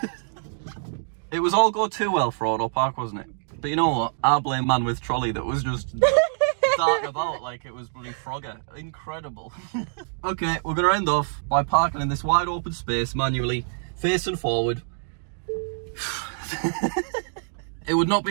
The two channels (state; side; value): silent; left; digital silence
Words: It was all go too well for AutoPark, wasn't it? But you know what? I blame man with trolley that was just darting about like it was bloody Frogger. Incredible. Okay, we're going to end off by parking in this wide open space manually, facing forward. It would not